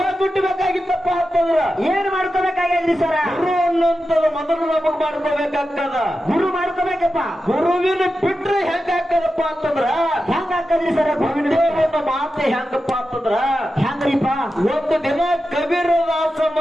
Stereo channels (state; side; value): normal; both; correlation 0.91